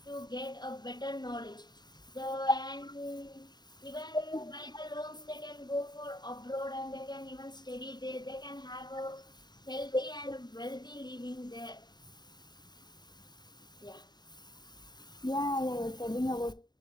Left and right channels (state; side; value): late; right; 0.20 ms